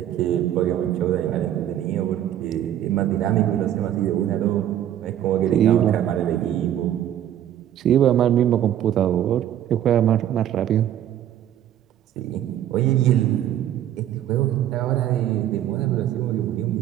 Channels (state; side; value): quieter; left; 11.3 dB